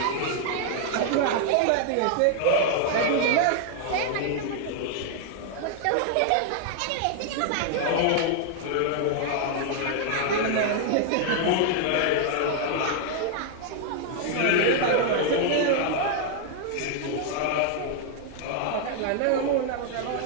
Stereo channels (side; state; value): both; different; correlation 0.00